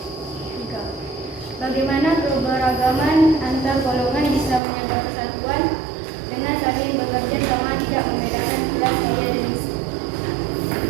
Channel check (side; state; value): left; drops out; at 4.6 s